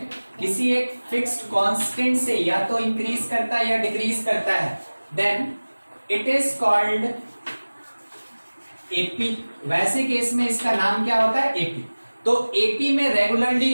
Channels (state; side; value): inverted; both; correlation -1.00